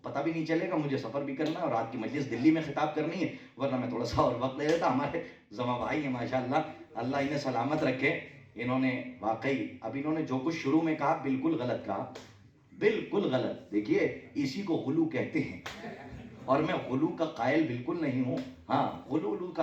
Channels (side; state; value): both; identical; correlation 1.00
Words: پتہ بھی نہیں چلے گا, مجھے سفر بھی کرنا ہے اور رات کی مجلس دلی میں خطاب کرنی ہے, ورنہ میں تھوڑا سا اور وقت لے لیتا. ہمارے زما بھائی ہیں ماشاءاللہ, اللہ انہیں سلامت رکھے. انہوں نے واقعی اب انہوں نے جو کچھ شروع میں کہا بالکل غلط کہا, بالکل غلط. دیکھیے اسی کو غلو کہتے ہیں اور میں غلو کا قائل بالکل نہیں ہوں. ہاں غلو کا